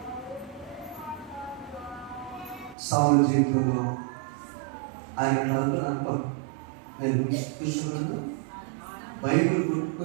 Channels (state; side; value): drops out; left; at 2.8 s